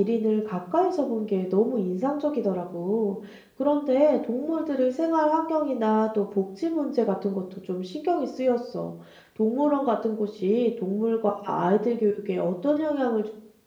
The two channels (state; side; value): identical; both; correlation 1.00